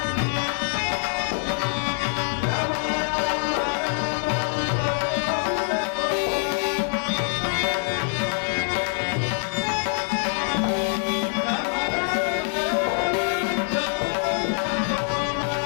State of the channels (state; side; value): silent; right; 62 dB below the other